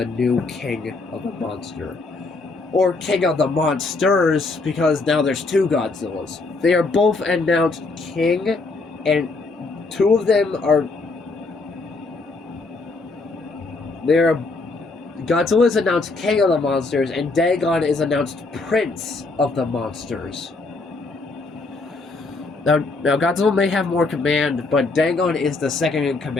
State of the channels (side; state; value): right; quieter; 3.6 dB